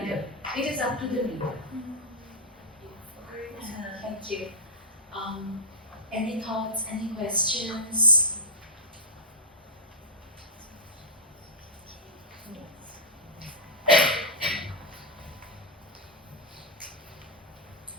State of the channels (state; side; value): normal; both; correlation -0.07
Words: It is up to the reader. Thank you. Any thoughts, any questions?